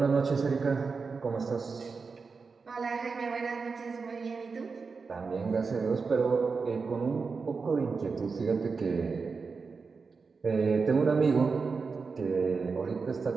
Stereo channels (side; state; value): left; quieter; 4.8 dB